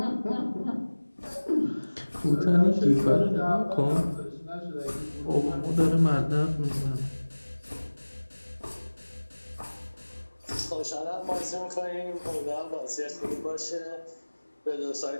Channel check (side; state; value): both; inverted; correlation -1.00